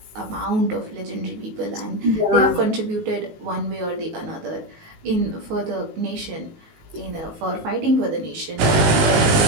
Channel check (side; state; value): left; late; 19 ms